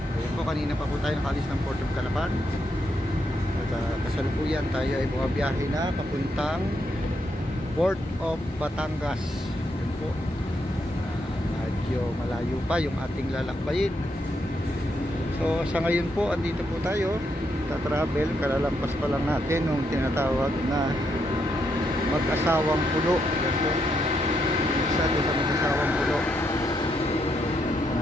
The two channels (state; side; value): normal; both; correlation 0.78